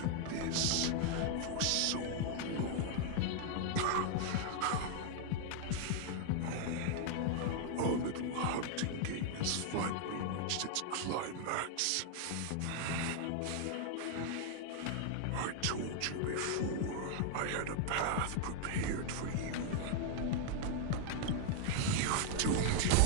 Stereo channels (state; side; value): different; both; correlation 0.00